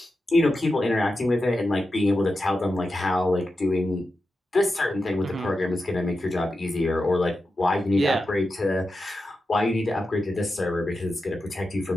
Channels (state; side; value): normal; both; correlation 0.90